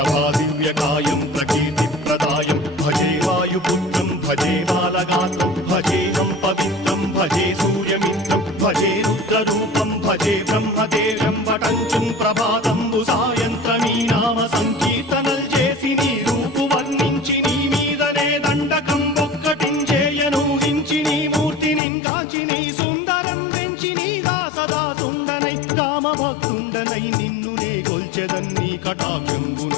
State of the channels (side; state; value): right; drops out; at 21.8 s